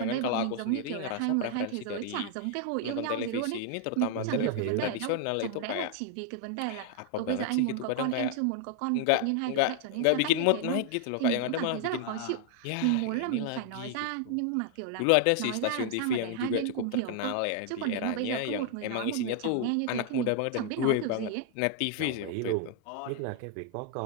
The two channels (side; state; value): both; different; correlation 0.00